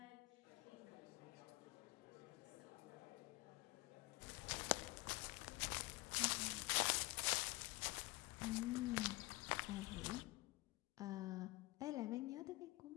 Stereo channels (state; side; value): quieter; right; 22.0 dB